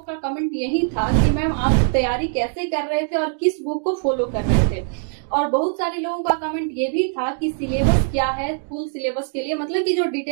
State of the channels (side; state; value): left; silent; 64 dB below the other